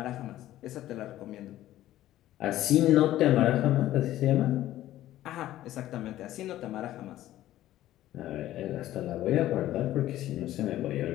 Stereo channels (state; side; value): quieter; right; 14.1 dB